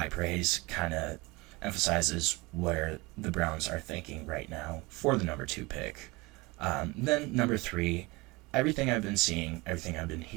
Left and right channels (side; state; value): left; quieter; 23.9 dB